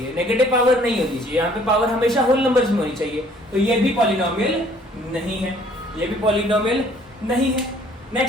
नेगेटिव पावर नहीं होनी चाहिए, यहाँ पे पावर हमेशा होल नंबर्स में होनी चाहिए। तो ये भी पॉलिनोमियल नहीं है, ये भी पॉलिनोमियल नहीं है।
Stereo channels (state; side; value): normal; both; correlation 0.58